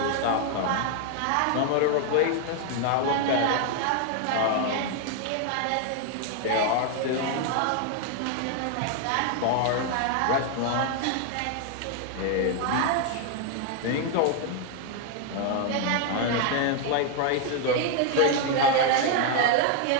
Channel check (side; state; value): both; different; correlation 0.00